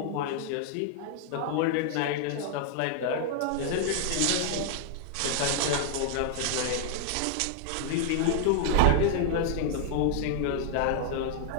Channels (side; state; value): both; different; correlation -0.01